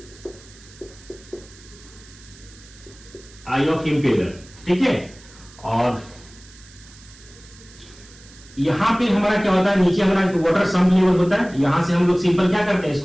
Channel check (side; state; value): right; noise; hiss, 23 dB below the sound